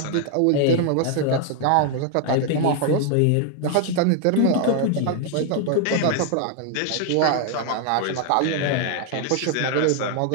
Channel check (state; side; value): different; both; correlation 0.00